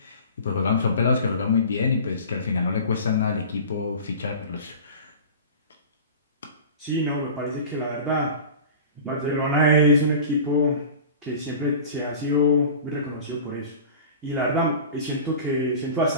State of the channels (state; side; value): inverted; both; correlation -0.37